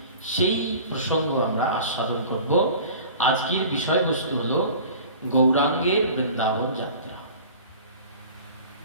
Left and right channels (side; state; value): both; inverted; correlation -0.42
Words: সেই প্রসঙ্গ আমরা আস্বাদন করব। আজকের বিষয়বস্তু হলো গৌরাঙ্গের বৃন্দাবন যাত্রা।